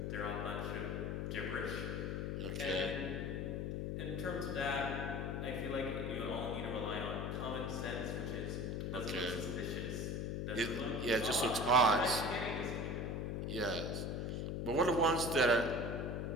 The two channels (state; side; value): noise; left; hum, 1 dB below the sound